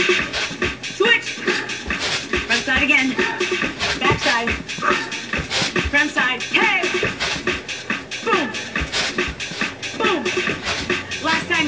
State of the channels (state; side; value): identical; both; correlation 1.00